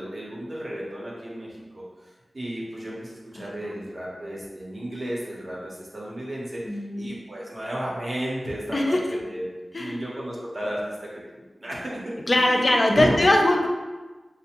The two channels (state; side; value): normal; both; correlation 0.96